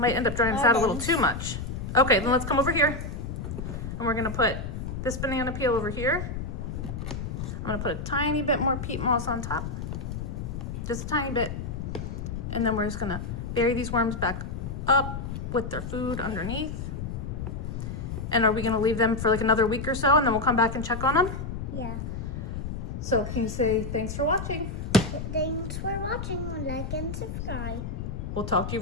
end up drying us out a little too much. Okay, then let's come over here. And we're gonna put this banana peel over here. I'm gonna put a tiny bit more peat moss on top. Just a tiny bit. And then we're just gonna bury these worms back up with their food underneath. And are we gonna leave them for like another week or so and then we'll come back and check on them? Yeah. So can you say thanks for watching? Thanks for watching. Like and subscribe. We'll talk to you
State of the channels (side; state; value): left; noise; rumble, 5 dB below the sound